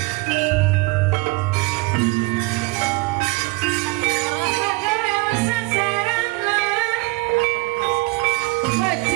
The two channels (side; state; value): left; quieter; 23.4 dB